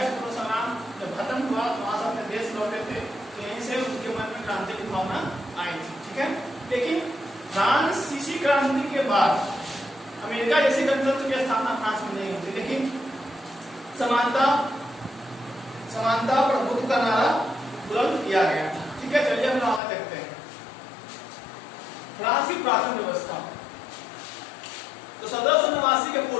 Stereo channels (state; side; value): drops out; right; at 19.8 s